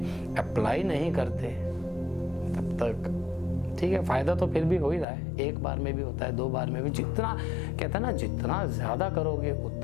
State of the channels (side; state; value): right; drops out; at 5.1 s